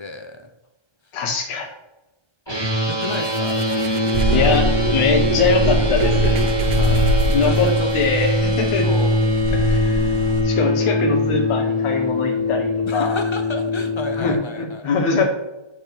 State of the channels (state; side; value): late; right; 1.1 ms